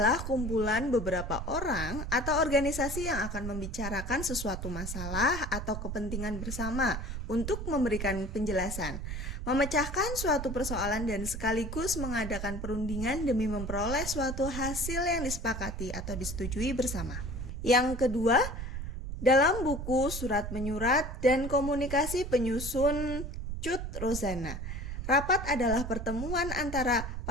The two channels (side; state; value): right; noise; rumble, 5 dB below the sound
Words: kumpulan beberapa orang atau organisasi yang akan membicarakan sesuatu masalah atau kepentingan bersama untuk memberikan penjelasan, memecahkan suatu persoalan dan sekaligus mengadakan perundingan demi memperoleh suatu hasil yang disepakati atau disetujui bersama. Yang kedua, dalam buku Surat Menyurat dan Komunikasi penyusun Cut Rozana, rapat adalah pertemuan antara